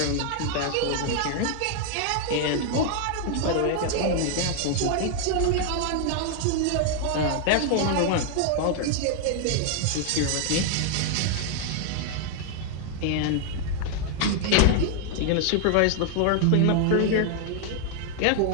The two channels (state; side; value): different; both; correlation 0.00